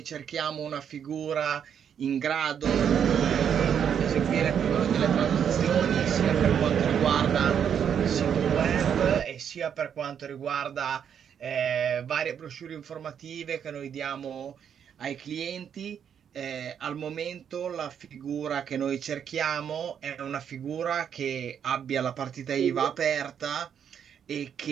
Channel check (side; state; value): left; quieter; 8.2 dB